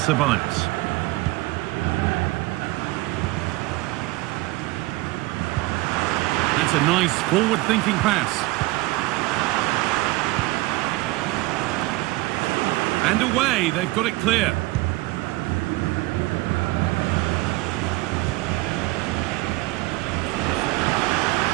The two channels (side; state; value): left; quieter; 20.7 dB